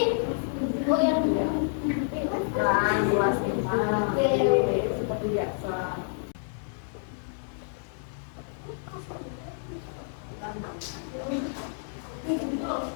Oh yang Kelas 25, seperti biasa.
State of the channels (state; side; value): silent; right; digital silence